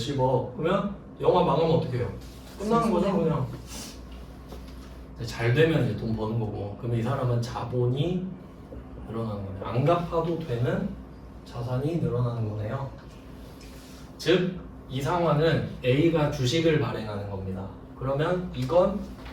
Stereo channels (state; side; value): identical; both; correlation 1.00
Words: 그러면 영화 망하면 어떻게 해요? 끝나는 거죠 그냥. 잘 되면 이제 돈 버는 거고. 그러면 이 사람은 자본이 늘어나는 거네요. 안 갚아도 되는 자산이 늘어나는 거네요. 즉 이 상황은 A가 주식을 발행하는 겁니다. 그러면 이건